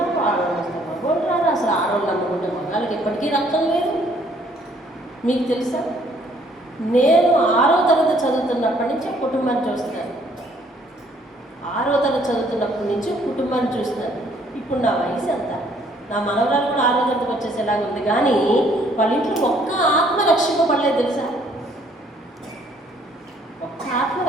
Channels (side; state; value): both; normal; correlation 0.63